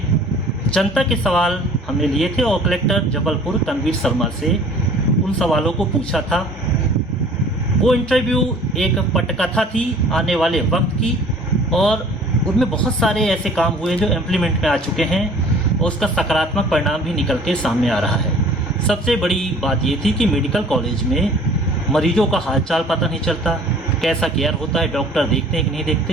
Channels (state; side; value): normal; both; correlation 0.50